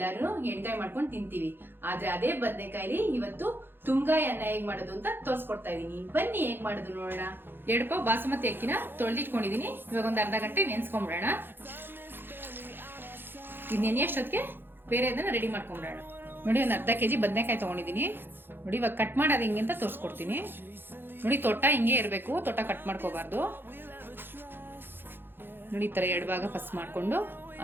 ಎಣ್ಗಾಯಿ ಮಾಡ್ಕೊಂಡು ತಿಂತೀವಿ. ಆದ್ರೆ ಅದೇ ಬದನೆಕಾಯಿಲಿ ಇವತ್ತು ತುಂಗಾಯಿ ಅನ್ನ ಹೇಗ್ ಮಾಡೋದು ಅಂತ ತೋರ್ಸ್ಕೊಡ್ತಾ ಇದೀನಿ. ಬನ್ನಿ ಹೇಗ್ ಮಾಡೋದು ನೋಡೋಣ. 2 ಪಾವ್ ಬಾಸುಮತಿ ಅಕ್ಕಿನ ತೊಳೆದಿಟ್ಕೊಂಡಿದೀನಿ. ಇವಾಗ ಒಂದು ಅರ್ಧ ಗಂಟೆ ನೆನ್ಸ್ಕೊಂಡ್ಬಿಡೋಣ. ಇದು ನೆನೆಯಷ್ಟೊತ್ತಿಗೆ ಬೇರೆ ಅದನ್ನ ರೆಡಿ ಮಾಡ್ಕೊಂಡ್ಬಿಡೋಣ. ನೋಡಿ, ಒಂದು ಅರ್ಧ ಕೆಜಿ ಬದನೆಕಾಯಿ ತಗೊಂಡಿದೀನಿ. ನೋಡಿ, ಇವಾಗ ಕಟ್ ಮಾಡೋದು ಹಿಂಗೆ ಅಂತ ತೋರಿಸ್ಕೊಡ್ತೀನಿ. ನೋಡಿ, ತೊಟ್ಟ ಹಿಂಗೆ ಇರಬೇಕು, ತೊಟ್ಟ ಕಟ್ ಮಾಡ್ಕೋಬಾರ್ದು. ನೋಡಿ, ಈ ಥರ 2 ಭಾಗ ಫಸ್ಟ್ ಮಾಡಿಕೊಂಡು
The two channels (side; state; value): left; late; 0.10 ms